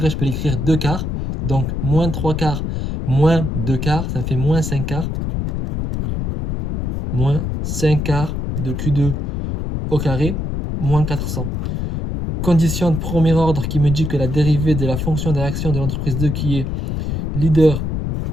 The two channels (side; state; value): left; noise; rumble, 2 dB below the sound